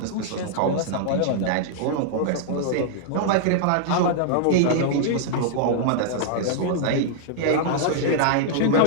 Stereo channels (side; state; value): both; different; correlation -0.01